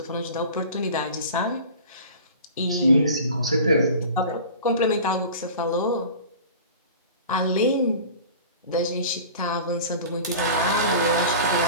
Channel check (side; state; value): both; inverted; correlation -0.39